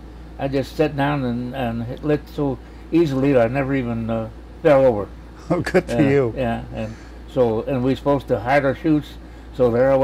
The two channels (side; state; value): both; identical; correlation 1.00